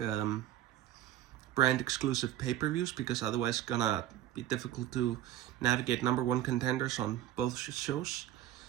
brand exclusive pay-per-views, because otherwise it's gonna be difficult to navigate number 1 contenders on both shows.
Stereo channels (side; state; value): left; quieter; 13.1 dB